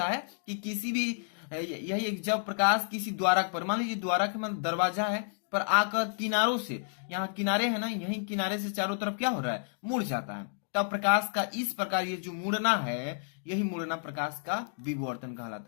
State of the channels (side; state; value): right; silent; digital silence